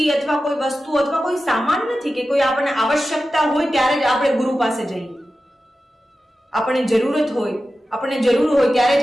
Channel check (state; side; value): normal; both; correlation 0.93